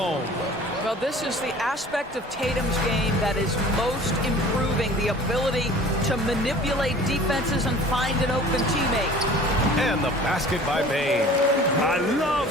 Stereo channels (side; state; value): both; normal; correlation 0.46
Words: Well, this is the aspect of Tatum's game that is most improving, the ability to manipulate defenses and find an open teammate. And the basket by Bain. I love